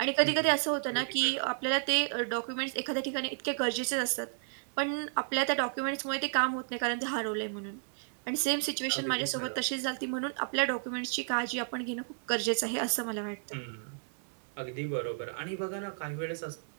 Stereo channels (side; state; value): left; silent; digital silence